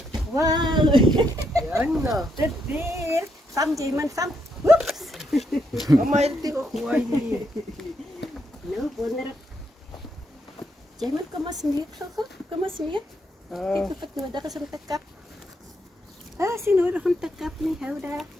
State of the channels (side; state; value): both; normal; correlation 0.78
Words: Wauw. Ja, nou. Dit weer. Sam, Jaman, Sam. Oeps. Mama, itu kuah ini. Nou, wonder. Jaman, kom maar smeek zo goed. Kom maar smeek. Kijk of het nodig is om te kap. Ah, is nodig om te kap nie. Hou daar.